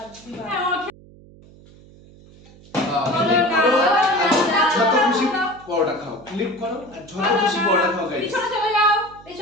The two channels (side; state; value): right; noise; hum, 23 dB below the sound